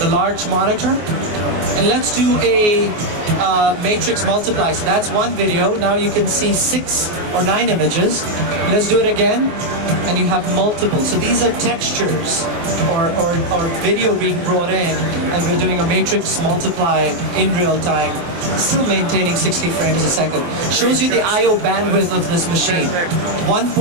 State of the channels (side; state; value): left; late; 24 ms